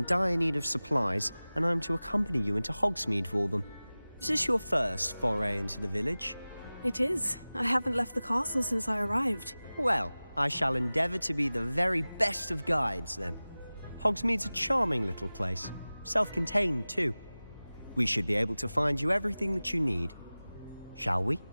dire need of supplies, and I'm to accompany you into Hogsmeade for them. Is this your first foray into the village? It is. I haven't left the castle since I arrived. Well, I shall endeavour to be the very best of guides, then. Hogsmeade's a charming little place, self-contained too. We should be able to find you everything that you need. Shall we?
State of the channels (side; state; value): both; inverted; correlation -0.98